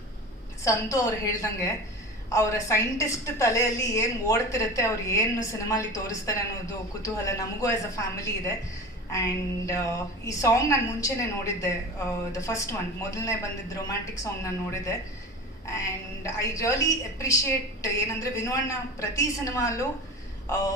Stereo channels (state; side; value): normal; both; correlation 0.32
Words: ಸಂತು ಅವ್ರು ಹೇಳ್ದಂಗೆ ಅವರ ಸೈಂಟಿಸ್ಟ್ ತಲೆಯಲ್ಲಿ ಏನು ಓಡ್ತಿರುತ್ತೆ, ಅವ್ರು ಏನು ಸಿನಿಮಾಲಿ ತೋರಿಸ್ತಾರೆ ಅನ್ನೋದು ಕುತೂಹಲ ನಮಗೂ ಆ್ಯಸ್ ಅ ಫ್ಯಾಮಿಲಿ ಇದೆ. ಆ್ಯಂಡ್ ಈ ಸಾಂಗ್ ನಾನು ಮುಂಚೆನೇ ನೋಡಿದ್ದೆ, ದ ಫಸ್ಟ್ ಒನ್, ಮೊದಲನೇ ಬಂದಿದ್ದು ರೊಮ್ಯಾಂಟಿಕ್ ಸಾಂಗ್ ನಾನು ನೋಡಿದ್ದೆ. ಆ್ಯಂಡ್ ಐ ರಿಯಲಿ ಅಪ್ರಿಷಿಯೇಟ್ ಏನಂದರೆ ವಿನು ಅಣ್ಣ ಪ್ರತಿ ಸಿನಿಮಾಲ್ಲೂ